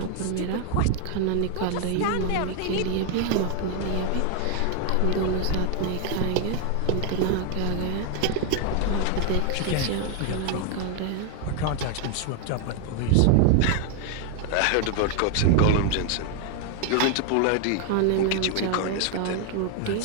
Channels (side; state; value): both; different; correlation 0.00